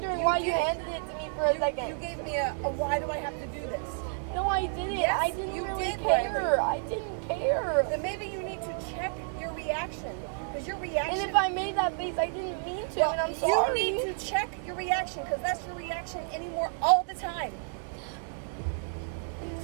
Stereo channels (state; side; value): silent; left; 58 dB below the other